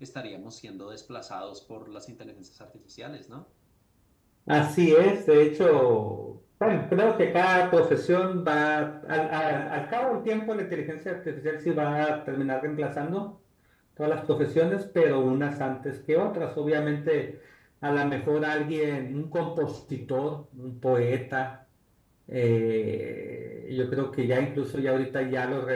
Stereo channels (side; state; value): both; identical; correlation 1.00